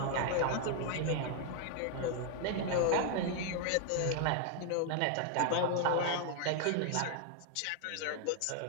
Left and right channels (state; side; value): different; both; correlation 0.00